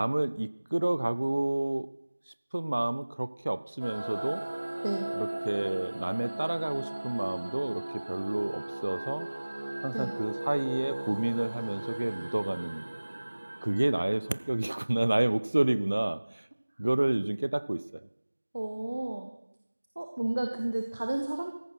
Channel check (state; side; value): inverted; both; correlation -1.00